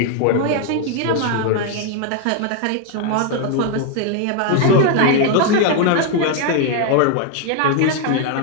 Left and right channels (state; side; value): different; both; correlation 0.01